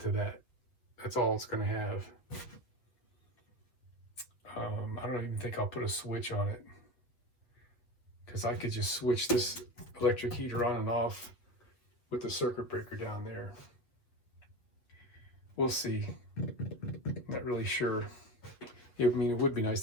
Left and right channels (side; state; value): right; late; 7.9 ms